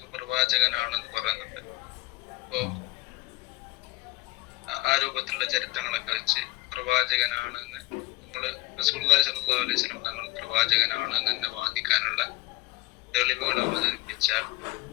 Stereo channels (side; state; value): right; quieter; 19.8 dB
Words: പ്രവാചകനാണെന്ന് പറയുന്നുണ്ട്. ഇപ്പോ ആ രൂപത്തിലുള്ള ചരിത്രങ്ങളൊക്കെ വെച്ച് പ്രവാചകനാണെന്ന് നമ്മള് റസൂലുള്ളാഹി സ്വല്ലല്ലാഹു അലൈഹി വസല്ലം തങ്ങൾ പ്രവാചകനാണെന്ന് തന്നെ വാദിക്കാനുള്ള തെളിവുകൾ അവതരിപ്പിച്ചാൽ